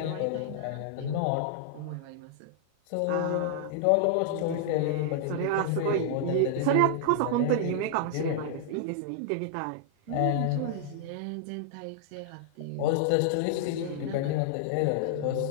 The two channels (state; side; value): different; both; correlation -0.01